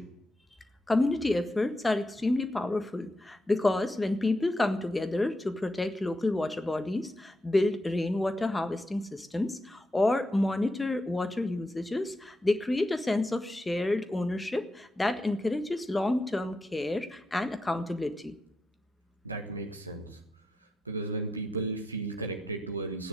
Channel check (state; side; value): normal; both; correlation 0.85